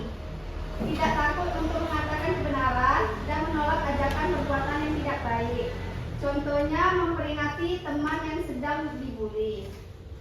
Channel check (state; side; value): identical; both; correlation 1.00